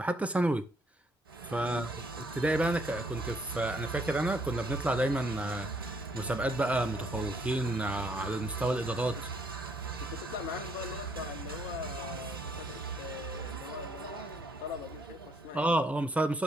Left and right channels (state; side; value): normal; both; correlation 0.69